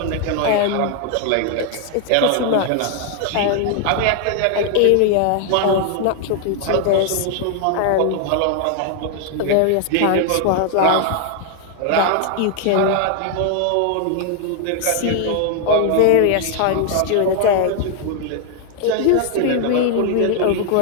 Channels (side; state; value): both; different; correlation 0.00